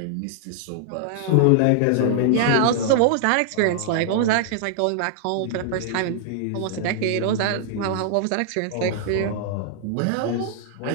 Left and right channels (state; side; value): different; both; correlation -0.01